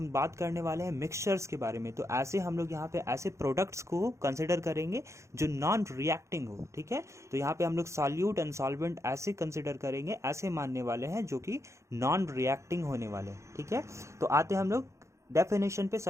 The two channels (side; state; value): left; late; 0.14 ms